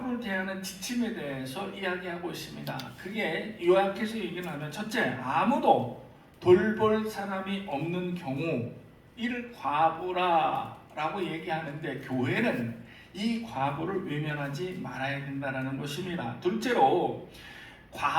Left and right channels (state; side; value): identical; both; correlation 1.00